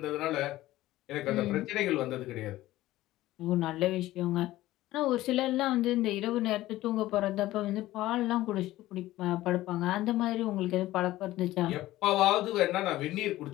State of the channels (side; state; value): right; quieter; 16.0 dB